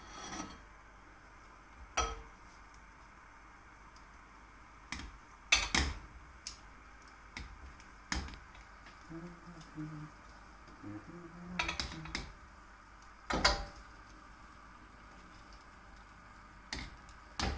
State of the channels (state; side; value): identical; both; correlation 1.00